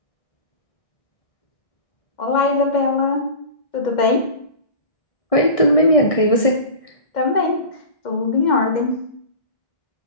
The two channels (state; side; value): late; right; 1.6 ms